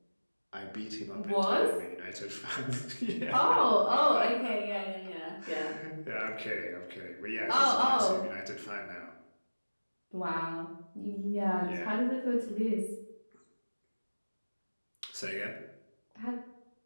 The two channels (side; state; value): both; inverted; correlation -1.00